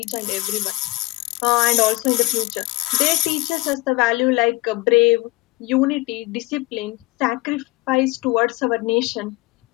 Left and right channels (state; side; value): quieter; right; 20.4 dB